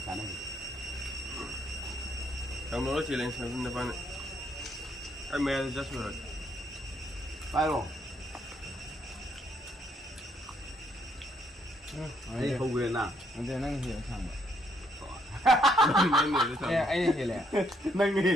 cái này trong đó chỉ lên xem nó phải cái mẹ rất rồi phải rồi ấy không về nào anh đây năng hiểu thằng nên người vậy anh hiểu lẽ nâng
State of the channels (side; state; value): both; normal; correlation 0.72